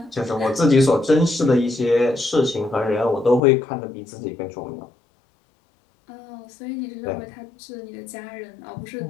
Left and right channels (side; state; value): right; drops out; at 3.4 s